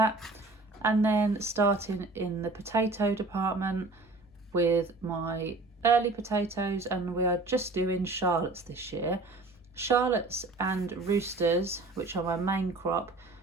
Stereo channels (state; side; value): quieter; left; 3.3 dB